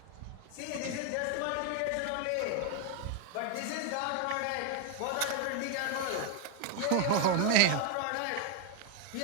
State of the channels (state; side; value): different; both; correlation 0.01